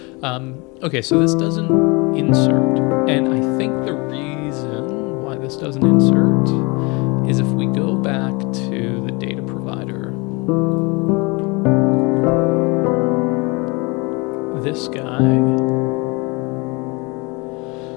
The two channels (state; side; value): quieter; right; 27.7 dB